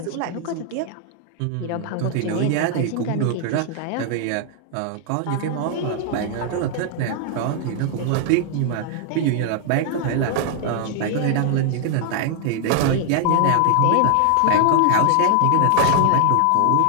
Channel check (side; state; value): both; different; correlation 0.00